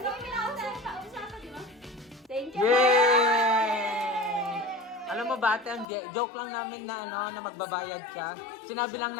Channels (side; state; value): right; drops out; at 5.9 s